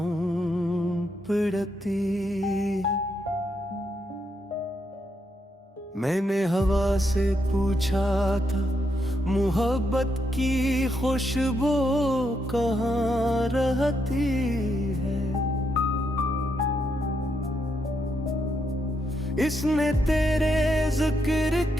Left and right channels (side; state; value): both; normal; correlation 0.79